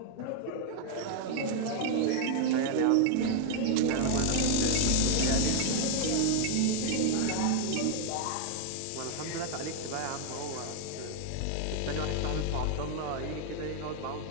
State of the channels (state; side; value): different; both; correlation 0.00